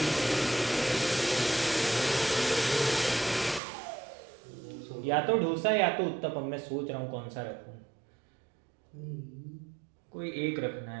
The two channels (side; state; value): left; drops out; at 3.6 s